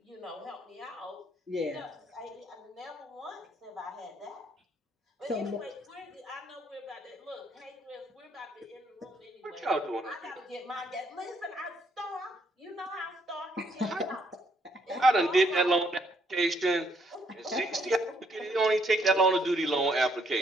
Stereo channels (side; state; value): both; normal; correlation 0.70